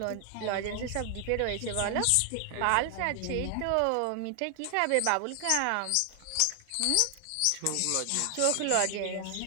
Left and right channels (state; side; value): different; both; correlation 0.00